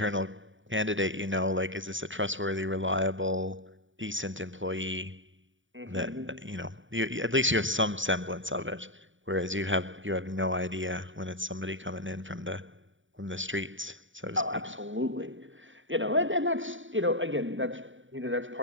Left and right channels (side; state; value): left; late; 0.56 ms